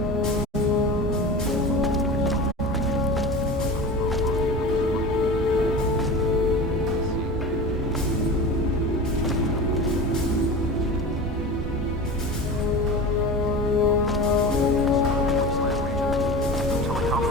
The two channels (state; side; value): normal; both; correlation 0.31